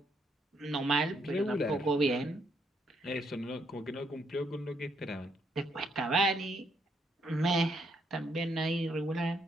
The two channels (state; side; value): normal; both; correlation 0.74